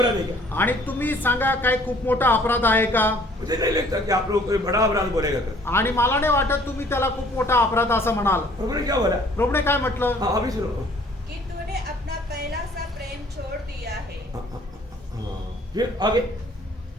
है क्या? आणि तुम्ही सांगा काय खूप मोठा अपराध आहे का? मुझे नहीं लगता कि आप लोग कोई बड़ा अपराध बोलेगा कर। आणि मला नाही वाटत तुम्ही त्याला खूप मोठा अपराध असं म्हणाल. प्रभु ने क्या बोला? प्रभूने काय म्हटलं? हाँ अभी सुनो। कि तूने अपना पहला सा प्रेम छोड़ दिया है। फिर आगे।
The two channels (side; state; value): both; normal; correlation 0.57